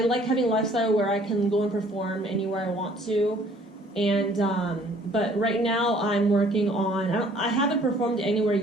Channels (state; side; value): normal; both; correlation 0.57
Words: like having a lifestyle where I can go and perform anywhere I want to, and but right now I'm working on. I haven't performed anywhere